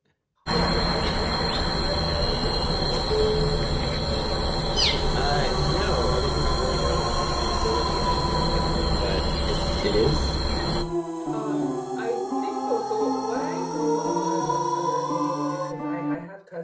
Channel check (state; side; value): identical; both; correlation 1.00